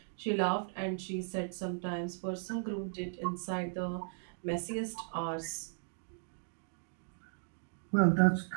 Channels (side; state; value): left; silent; digital silence